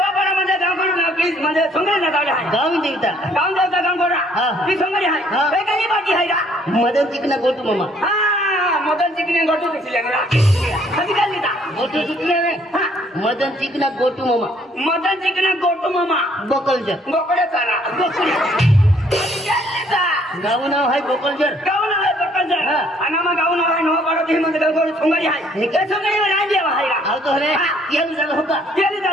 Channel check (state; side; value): normal; both; correlation 0.63